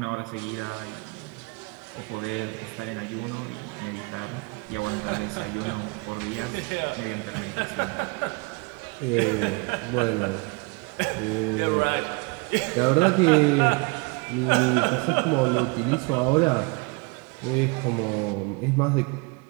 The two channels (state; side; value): quieter; left; 29.3 dB